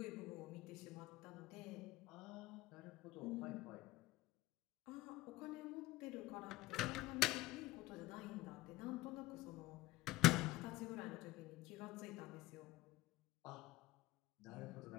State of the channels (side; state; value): right; quieter; 18.4 dB